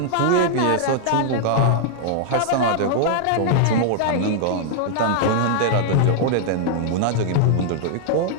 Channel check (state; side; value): different; both; correlation -0.01